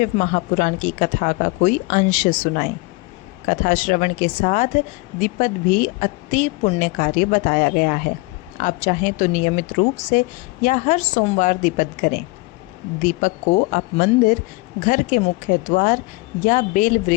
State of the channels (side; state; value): right; quieter; 24.3 dB